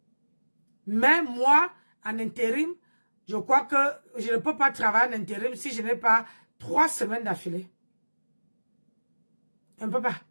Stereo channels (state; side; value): inverted; both; correlation -1.00